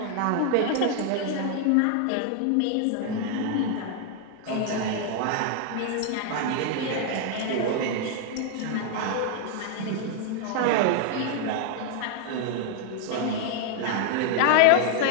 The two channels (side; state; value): both; different; correlation 0.00